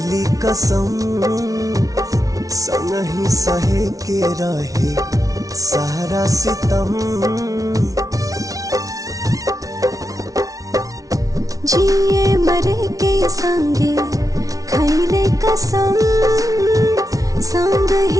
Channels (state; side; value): late; left; 0.17 ms